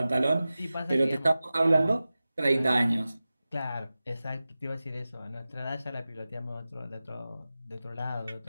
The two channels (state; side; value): inverted; both; correlation -0.95